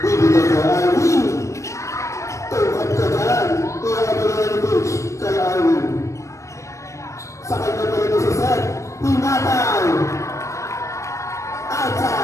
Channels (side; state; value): right; late; 0.15 ms